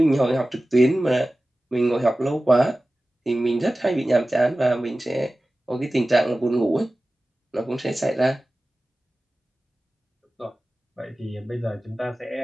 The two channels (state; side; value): normal; both; correlation 0.96